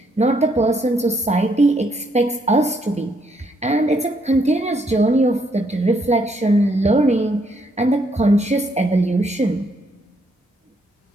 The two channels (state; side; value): normal; both; correlation 0.72